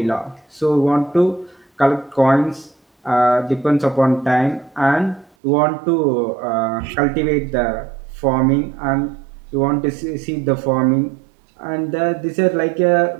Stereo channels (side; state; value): left; drops out; at 5.3 s